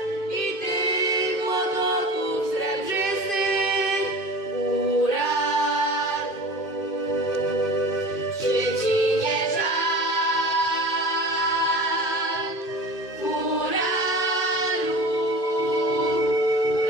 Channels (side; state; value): right; late; 2.1 ms